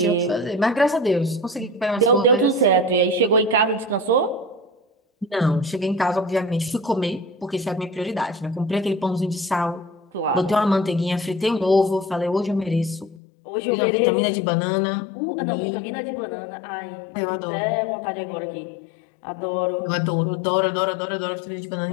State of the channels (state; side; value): drops out; right; at 13.2 s